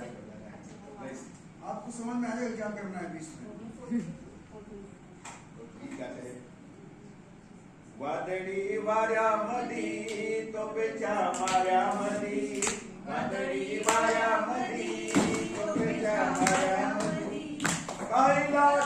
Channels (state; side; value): identical; both; correlation 1.00